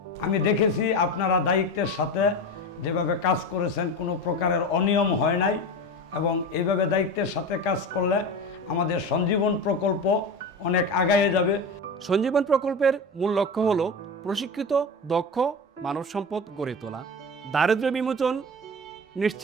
আমি দেখেছি আপনারা দায়িত্বের সাথে যেভাবে কাজ করেছেন, কোনো প্রকারের অনিয়ম হয় নাই, এবং এইভাবে দায়িত্বের সাথে কাজ করলে আমাদের সঞ্জীবন প্রকল্প অনেক আগায়ে যাবে। সঞ্জীবন প্রকল্পের মূল লক্ষ্য হল প্রশিক্ষিত দক্ষ মানব সম্পদ গড়ে তোলা, দারিদ্র্য বিমোচন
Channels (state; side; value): normal; both; correlation 0.26